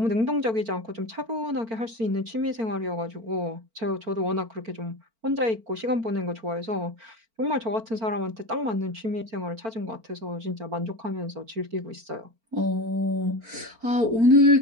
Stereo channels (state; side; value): late; left; 4.4 ms